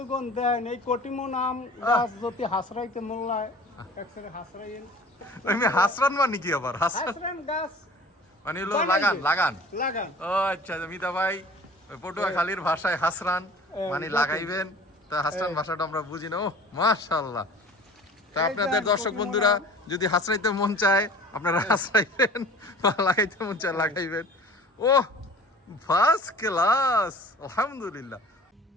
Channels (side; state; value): both; normal; correlation 0.44